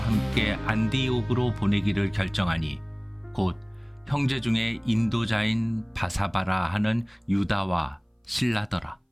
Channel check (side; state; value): both; identical; correlation 1.00